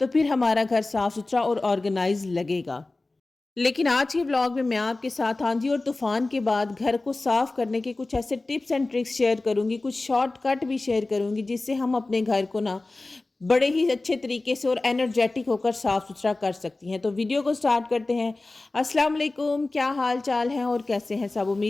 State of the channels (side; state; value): right; quieter; 3.2 dB